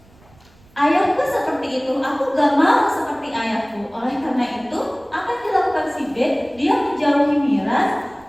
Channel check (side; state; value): right; noise; rumble, 28 dB below the sound